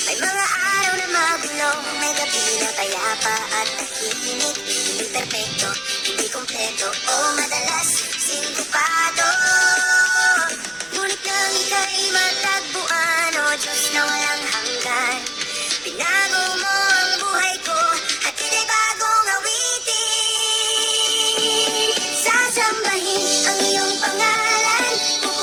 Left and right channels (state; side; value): noise; right; rumble, 30 dB below the sound